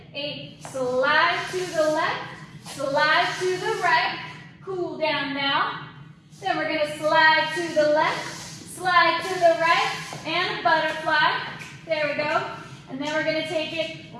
8. Slide to the left, slide to the right. Cool down now. Then we're gonna slide to the left, slide to the right, and butterfly. There we go. And then we're gonna take it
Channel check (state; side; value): identical; both; correlation 1.00